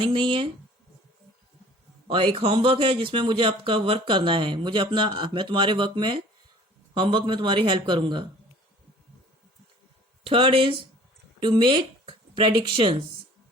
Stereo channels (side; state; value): both; normal; correlation 0.49